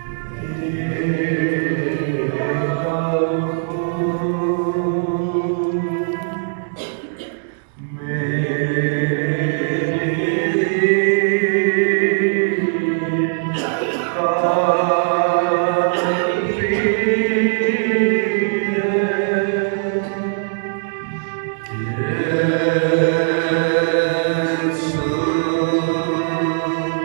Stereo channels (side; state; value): left; silent; digital silence